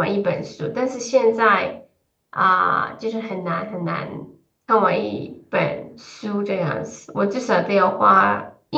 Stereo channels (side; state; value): both; identical; correlation 1.00